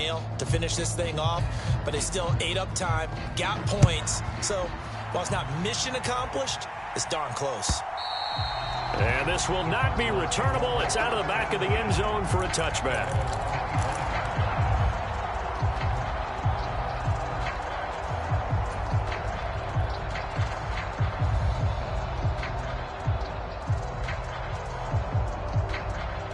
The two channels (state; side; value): identical; both; correlation 1.00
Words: to finish this thing off, but they still ate up time, got points. So while it's not mission accomplished, it's darn close. And this will not be returnable. It's out of the back of the end zone for a touchback.